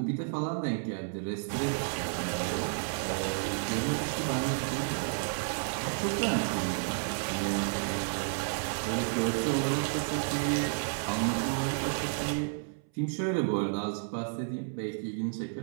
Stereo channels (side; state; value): left; silent; 57 dB below the other